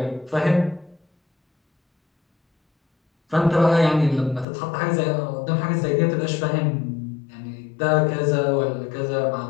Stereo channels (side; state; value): right; drops out; at 4.5 s